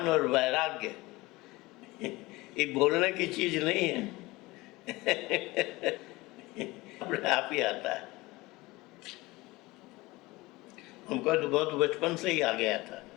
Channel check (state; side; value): quieter; right; 21.2 dB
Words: और वैराग्य ये बोलने की चीज नहीं है। अपने आप ही आता है। हमको तो बहुत बचपन से ही आ गया था।